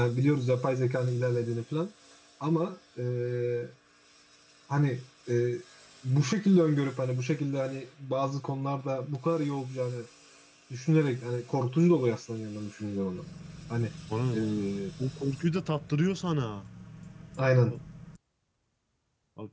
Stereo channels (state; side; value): identical; both; correlation 1.00